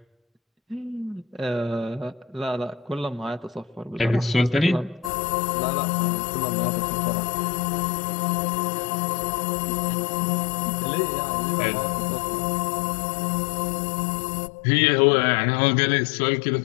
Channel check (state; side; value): drops out; right; at 5.1 s